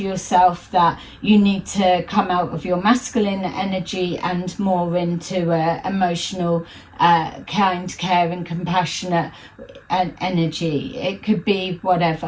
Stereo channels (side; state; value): both; identical; correlation 1.00